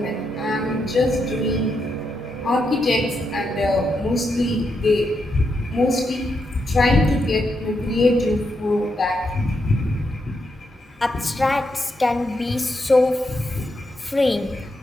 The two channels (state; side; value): normal; both; correlation 0.82